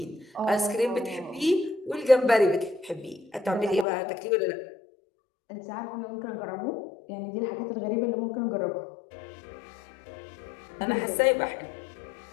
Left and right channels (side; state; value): right; drops out; at 3.9 s